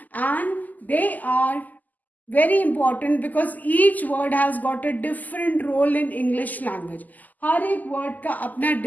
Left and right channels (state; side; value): late; right; 0.082 ms